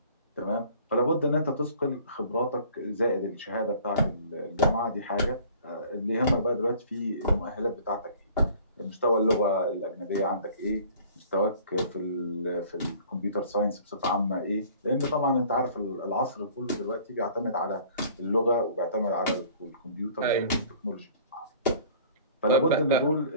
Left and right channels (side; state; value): both; inverted; correlation -0.51